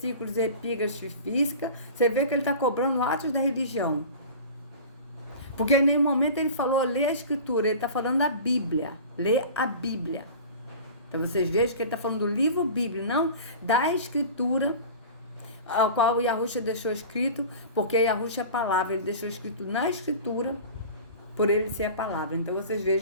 epígrafes física. Você vê que ele está cobrando atos da religião. Porque em nenhum momento ele falou ler a Escritura, ele está falando da Bíblia, ler a Bíblia. Então vocês vejam que ele está falando do livro Bíblia, não da Escritura, ao qual o Yahushua deixou escrito, porque Yahushua é a palavra, ele deixou escrito na Escritura, por ele ser a palavra. Então vocês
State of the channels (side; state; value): both; inverted; correlation -0.37